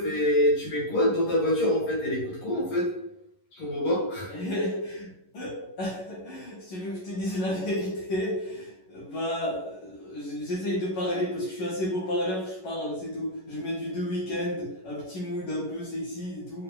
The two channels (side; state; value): right; late; 11 ms